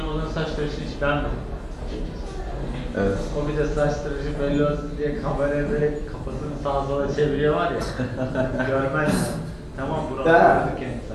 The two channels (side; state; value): both; identical; correlation 1.00